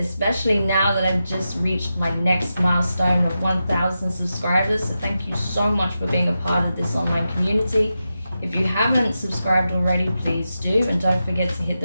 now that I've just reached my next milestone of 1,000 subscribers. So thank you so much for being a part of this online community. If you haven't subscribed already, please do, and don't forget to hit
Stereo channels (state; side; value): inverted; both; correlation -0.90